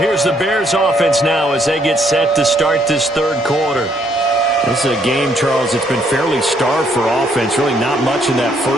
the Bears offense now as they get set to start this third quarter. This is a game, Charles, that's been fairly starved for offense. Really not much in that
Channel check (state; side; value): normal; both; correlation 0.69